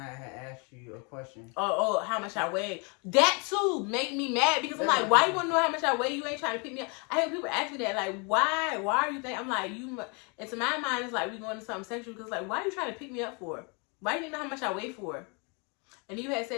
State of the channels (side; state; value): right; quieter; 33.4 dB